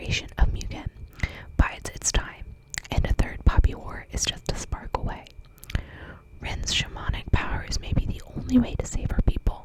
of Mugen, bides its time, and a third Poppy War is just a spark away. Rin's shamanic powers may be the only way to save her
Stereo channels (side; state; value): both; identical; correlation 1.00